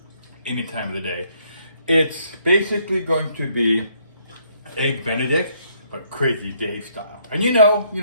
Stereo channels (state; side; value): inverted; both; correlation -0.68